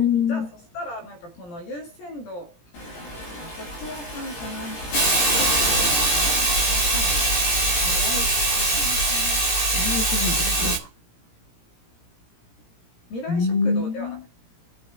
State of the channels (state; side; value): late; right; 17 ms